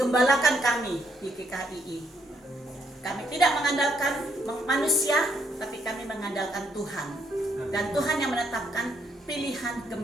kami di GKI. Kami tidak mengandalkan manusia, tapi kami mengandalkan Tuhan. Dan Tuhan yang menetapkan pilihan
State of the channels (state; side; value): normal; both; correlation 0.73